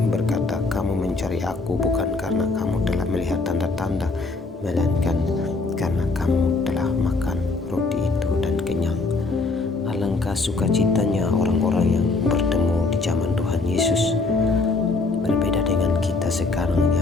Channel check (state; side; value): quieter; right; 3.7 dB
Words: berkata, "Kamu mencari aku bukan karena kamu telah melihat tanda-tanda, melainkan karena kamu telah makan roti itu dan kenyang." Alangkah sukacitanya orang-orang yang bertemu di zaman Tuhan Yesus. Berbeda dengan kita sekarang